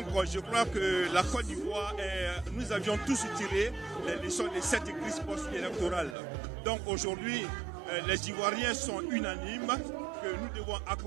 je crois que la Côte d'Ivoire, nous avions tous tiré les leçons de cette crise post-électorale. Donc aujourd'hui, les Ivoiriens sont unanimes que nous devons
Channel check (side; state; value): left; drops out; at 6.2 s